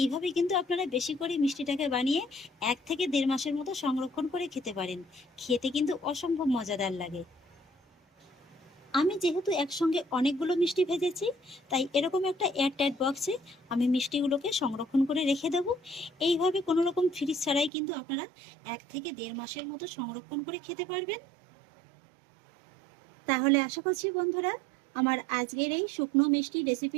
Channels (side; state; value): left; drops out; at 17.7 s